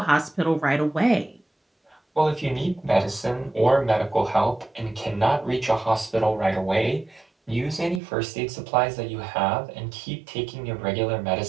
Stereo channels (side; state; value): left; drops out; at 8.0 s